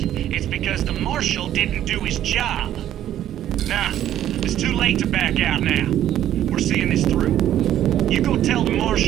because the Marshal didn't do his job. Nah, it's too late to back out now. We're seeing this through. You go tell the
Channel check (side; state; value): left; quieter; 11.7 dB